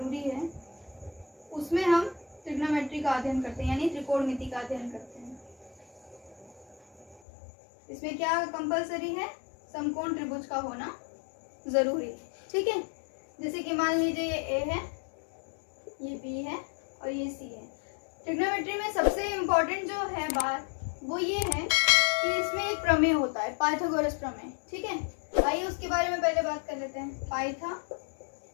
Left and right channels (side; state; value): right; drops out; at 7.2 s